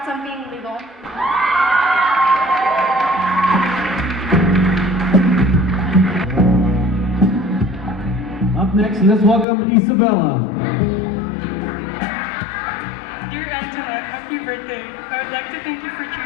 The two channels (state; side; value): drops out; right; at 9.5 s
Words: on being legal. Up next, let's welcome Isabella. Dear Antonette, happy birthday. I would like to thank you for